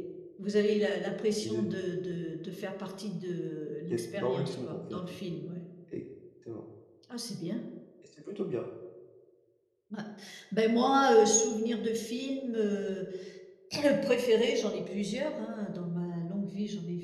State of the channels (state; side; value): identical; both; correlation 1.00